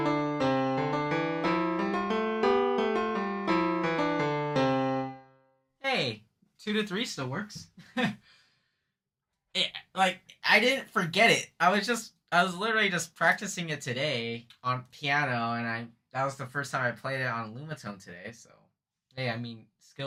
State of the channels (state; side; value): identical; both; correlation 1.00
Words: Hey, 2 to 3 still works. Like I didn't forget it. I was literally just practicing it today on piano, and I that was the first time I played it on lumatone today. So hey, I mean